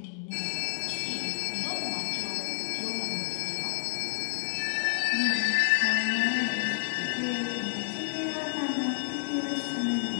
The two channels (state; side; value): silent; right; 58 dB below the other